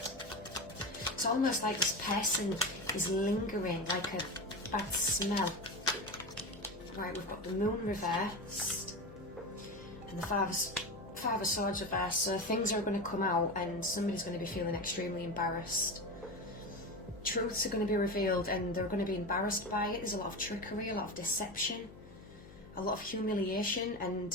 It's almost like this person is lingering, like a bad smell. Right, we've got the moon reversed and the five of swords reversed. So things are going to come out and somebody's going to be feeling extremely embarrassed. Truths are going to be revealed and they're going to be embarrassed by it. There's a lot of trickery, a lot of deception, a lot of humiliation,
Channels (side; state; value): left; noise; hum, 18 dB below the sound